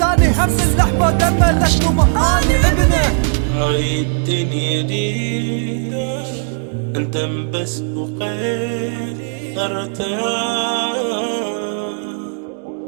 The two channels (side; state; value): left; silent; 68 dB below the other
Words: اني هم اللحمة دمه لشنو اني ابنه. هاي الدنيا دي انت بس بقيت ارتاح،